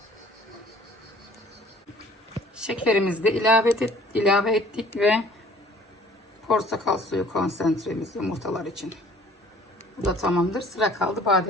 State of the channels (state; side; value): normal; both; correlation 0.54